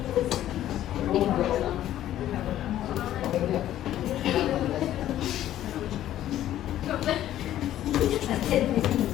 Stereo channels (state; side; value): quieter; right; 12.6 dB